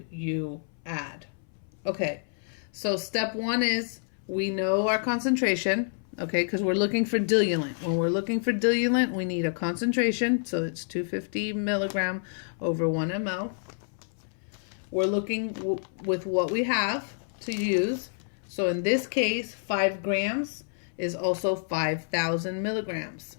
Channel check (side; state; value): right; silent; 59 dB below the other